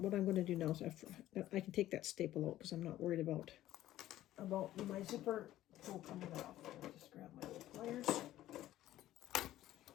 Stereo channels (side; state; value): right; quieter; 14.1 dB